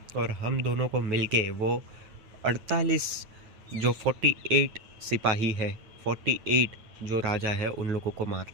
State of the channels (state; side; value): late; left; 9.1 ms